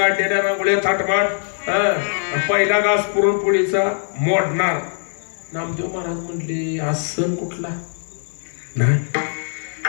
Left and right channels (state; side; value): silent; right; digital silence